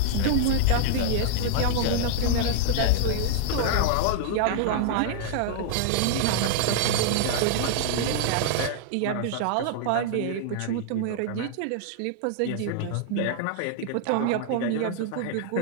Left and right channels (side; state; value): both; different; correlation 0.00